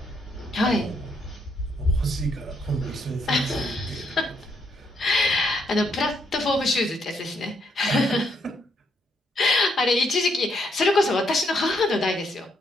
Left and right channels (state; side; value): normal; both; correlation 0.74